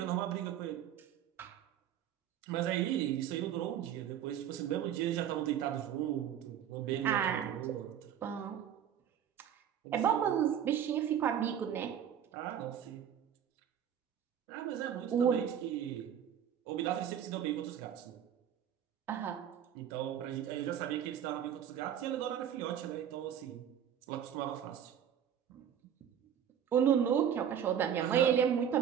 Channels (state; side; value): quieter; left; 9.4 dB